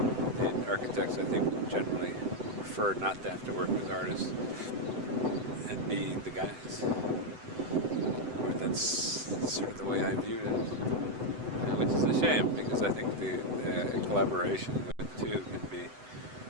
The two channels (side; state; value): left; late; 7.9 ms